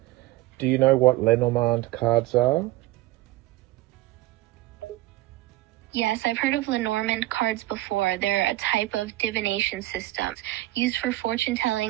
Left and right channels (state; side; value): quieter; left; 17.7 dB